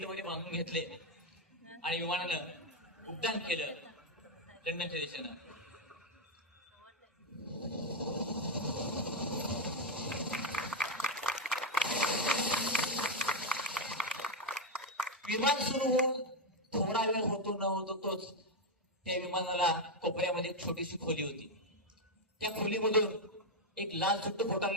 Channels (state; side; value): normal; both; correlation 0.04